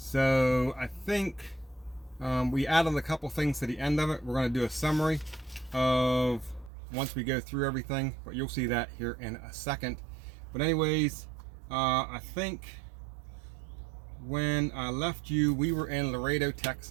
I think we added a couple things to the end of it. We're going to do a summary of once we go through everything, but you'll see that here in a second. But anyways, I think when I left you, we were in Laredo,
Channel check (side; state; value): left; drops out; at 6.7 s